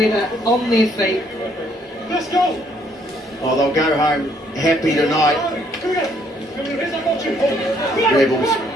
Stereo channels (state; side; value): normal; both; correlation 0.67